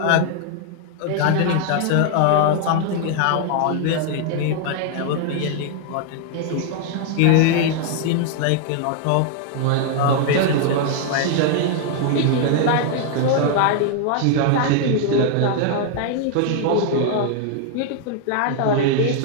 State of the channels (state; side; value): different; both; correlation 0.00